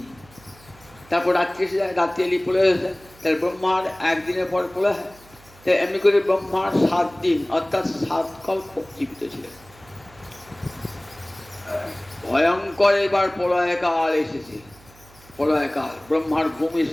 তারপর রাত্রি এসে যায়, রাত্রি এলি প্রলয় হয়ে যায়, তাহলে ব্রহ্মার 1 দিনের পর প্রলয় হয়। তাই এমনি করে ব্রহ্মার 7 দিন অর্থাৎ 7 কল্প জীবিত ছিলেন। ভয়ঙ্কর এবার প্রলয়কাল এসেছে। প্রলয়কাল, ব্রহ্মার ঘুম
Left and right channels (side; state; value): right; noise; hum, 25 dB below the sound